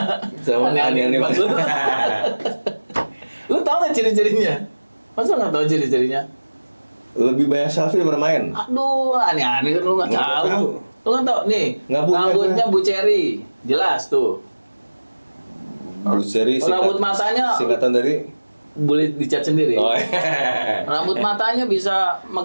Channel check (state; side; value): inverted; both; correlation -1.00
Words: Aneh-aneh Mas lu. Lu tau nggak ciri-cirinya? Masa nggak tahu ciri-cirinya? Lebih banyak selfie daripada main. Aduh, aneh-aneh kan lu nggak Nggak tahu. tahu. Lu nggak tahu nih. Nggak punya Rambutnya Bu Cherry, jelas tuh. Bruce Cherry Rambut matanya singkatan dari boleh dicat sendiri. oh, iya. Rambut matanya bisa